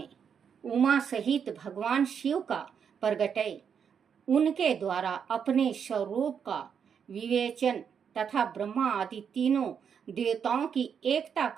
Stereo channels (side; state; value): left; quieter; 7.3 dB